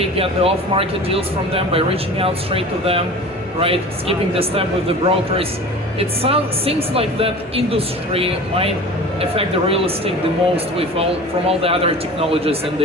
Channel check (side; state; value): both; normal; correlation 0.37